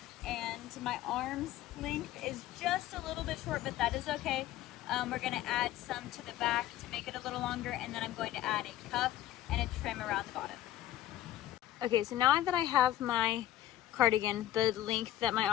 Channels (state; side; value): quieter; right; 13.5 dB